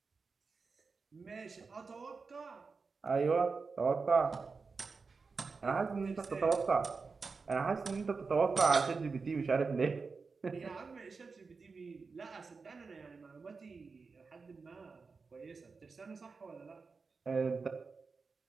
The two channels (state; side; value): quieter; left; 4.6 dB